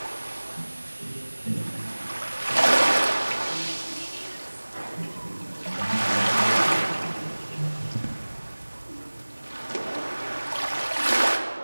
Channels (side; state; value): both; inverted; correlation -1.00